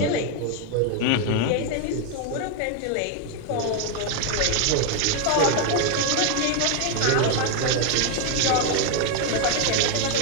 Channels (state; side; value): different; both; correlation 0.01